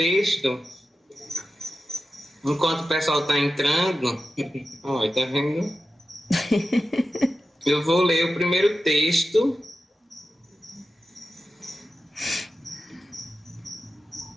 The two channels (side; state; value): both; normal; correlation 0.92